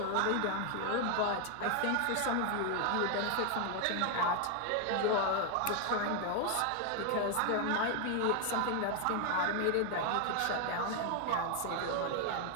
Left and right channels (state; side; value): different; both; correlation 0.01